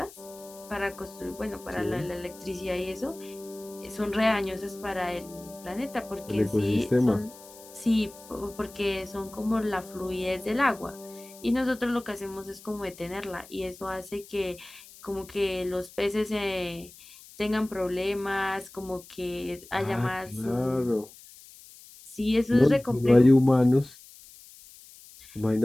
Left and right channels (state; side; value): noise; left; hiss, 20 dB below the sound